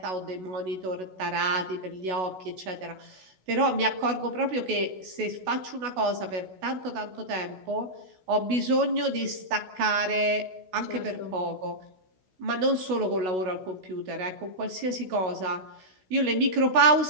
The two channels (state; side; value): late; left; 16 ms